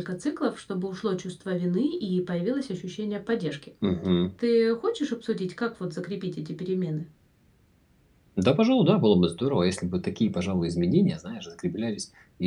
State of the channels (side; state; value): both; identical; correlation 1.00